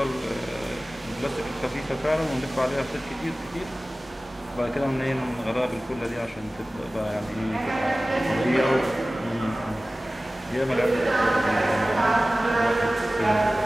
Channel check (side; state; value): both; normal; correlation 0.97